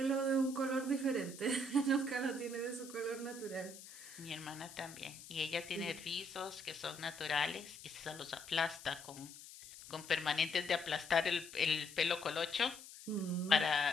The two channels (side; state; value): left; noise; hiss, 15 dB below the sound